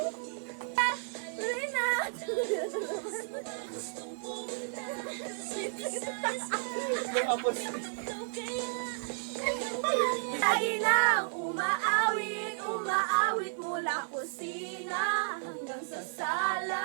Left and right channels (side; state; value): left; silent; digital silence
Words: Lagi lang umaawit, umaawit mula kusina hanggang sa